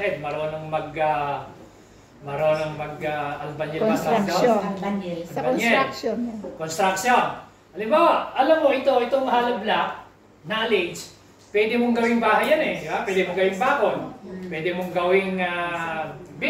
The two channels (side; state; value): both; identical; correlation 1.00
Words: marunong mag-albanil ba? Construction. Sa construction. Construction. Halimbawa, alam mo, itong hollow block, knowledge, pwede mong gawing bahay yan eh. Diba? Pwede mong gawing bakod. Pwede mong gawing